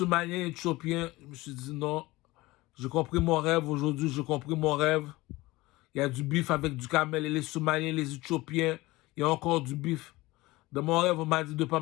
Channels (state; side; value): quieter; right; 20.1 dB